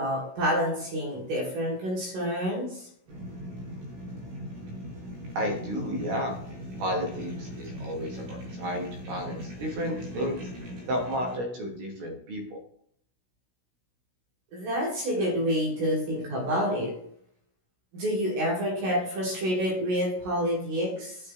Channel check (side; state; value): left; late; 16 ms